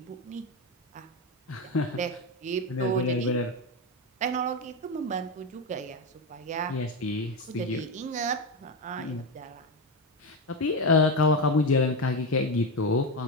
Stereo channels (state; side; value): normal; both; correlation 0.13